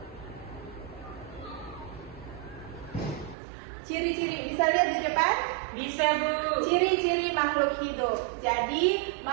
Ciri-ciri, bisa lihat di depan? Bisa Bu. Ciri-ciri makhluk hidup. Jadi,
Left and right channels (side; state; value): left; drops out; at 3.4 s